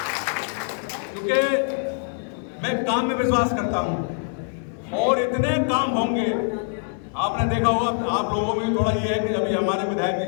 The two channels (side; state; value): right; silent; 63 dB below the other